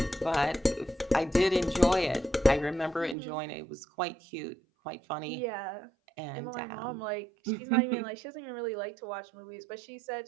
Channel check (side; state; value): left; drops out; at 3.2 s